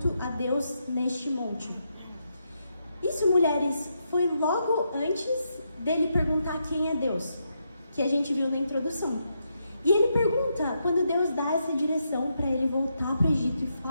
a Deus neste monte. Isso, mulheres, foi logo antes dele perguntar quem é Deus, que a gente viu na introdução. E ele pergunta, quando Deus dá essa direção para ele voltar para o Egito e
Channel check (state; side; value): inverted; both; correlation -0.81